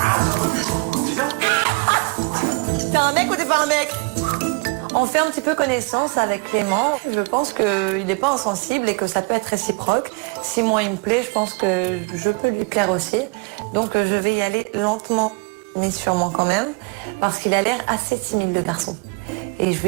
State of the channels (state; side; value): quieter; left; 32.5 dB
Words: T'es un mec ou t'es pas un mec? On fait un petit peu connaissance avec Clément. Je pense qu'il n'est pas insensible et que ça peut être réciproque. Si moi il me plaît, je pense que je peux lui plaire aussi. Donc je vais y aller lentement, mais sûrement quand même, parce qu'il a l'air assez timide, le garçon. Et je